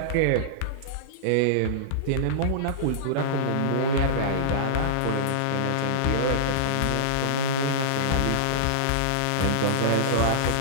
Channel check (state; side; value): different; both; correlation -0.02